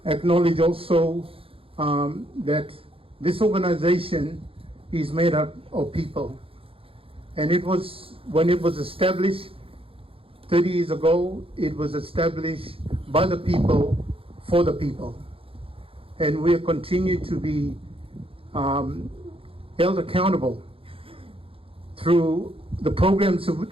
acknowledge also that this organization is made up of people. And when it was established 30 years ago, it was established by the people, for the people. And we continue to be held accountable through the programs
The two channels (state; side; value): late; left; 0.27 ms